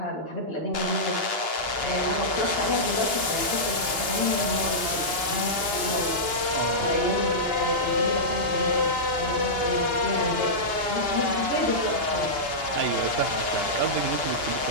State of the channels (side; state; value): left; late; 2.9 ms